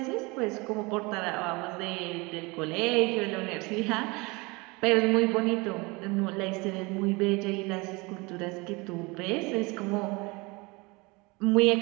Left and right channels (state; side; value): quieter; left; 25.7 dB